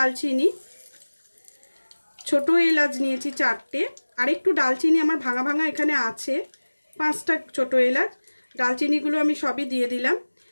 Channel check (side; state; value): both; inverted; correlation -1.00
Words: ছোট এলাচ নিয়েছি 4টে, আর একটু ডালচিনি আমার ভাঙা ভাঙা এখানে আছে, 5টা ছোট এলাচ। ডালচিনিগুলো আমি সবই দিয়ে দিলাম।